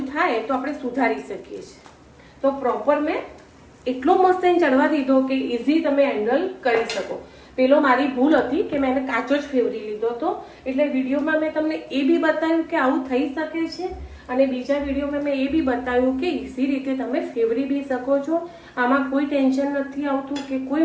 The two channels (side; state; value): both; identical; correlation 1.00